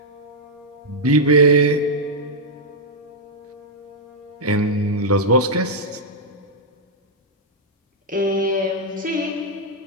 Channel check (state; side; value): normal; both; correlation -0.05